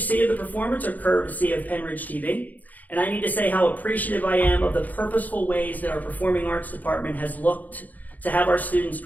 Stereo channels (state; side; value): late; right; 0.080 ms